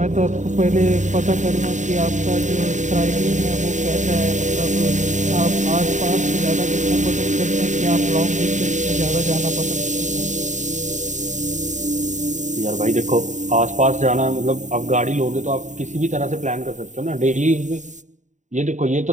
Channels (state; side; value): late; left; 0.35 ms